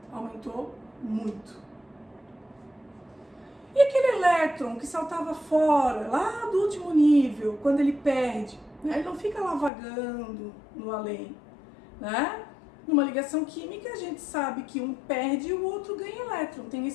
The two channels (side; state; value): right; drops out; at 9.7 s